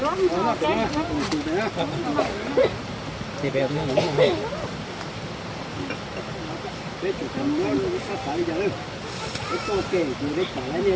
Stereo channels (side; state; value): both; identical; correlation 1.00